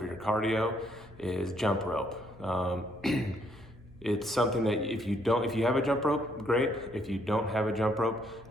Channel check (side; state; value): right; noise; hum, 26 dB below the sound